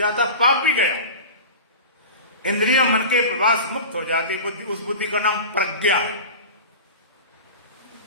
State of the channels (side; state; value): both; inverted; correlation -0.32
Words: पाप भी गया, इंद्रियों मन के प्रभाव से मुक्त हो जाती बुद्धि। उस बुद्धि का नाम प्रज्ञा है।